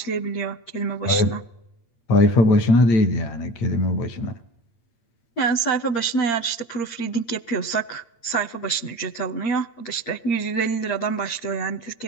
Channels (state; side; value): late; right; 8.6 ms